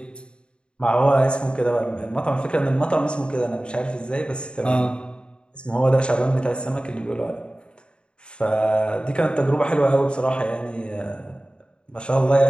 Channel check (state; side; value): late; right; 0.053 ms